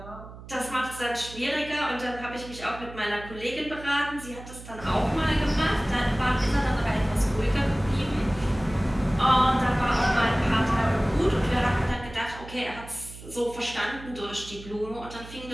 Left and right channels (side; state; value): right; noise; hum, 15 dB below the sound